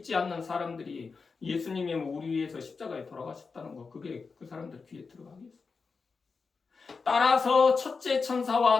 않는 사람들이 예수님이 우리 위해서 십자가에 돌아가셨다는 거, 그게 그 사람들 귀에 들어가겠어요. 따라서 첫째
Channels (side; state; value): right; quieter; 4.8 dB